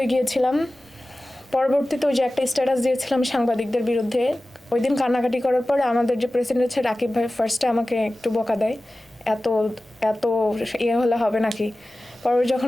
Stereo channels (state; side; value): normal; both; correlation 0.96